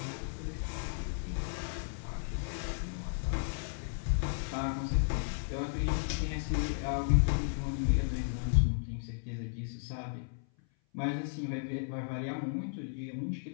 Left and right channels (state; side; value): silent; right; 55 dB below the other